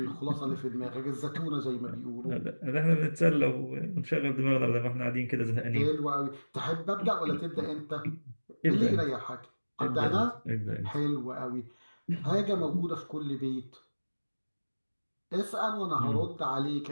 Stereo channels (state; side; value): inverted; both; correlation -1.00